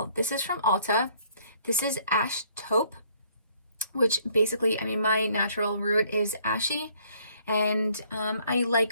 This is from Ulta. This is Ash Taupe, which basically, I mean, my natural root is ashy, and I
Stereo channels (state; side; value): inverted; both; correlation -0.63